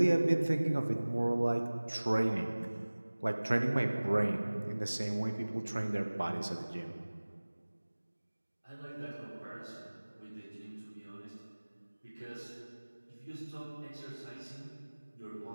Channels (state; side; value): inverted; both; correlation -1.00